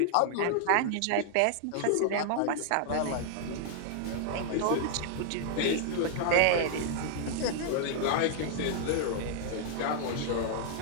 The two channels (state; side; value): different; both; correlation -0.01